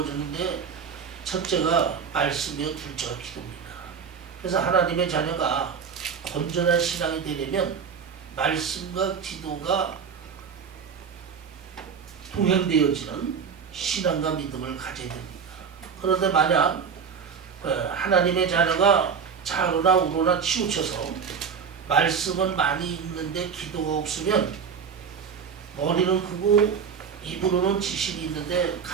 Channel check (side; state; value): left; quieter; 6.5 dB